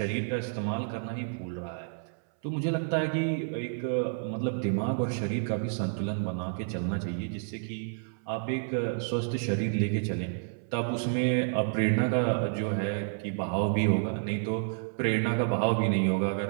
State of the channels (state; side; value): silent; left; 58 dB below the other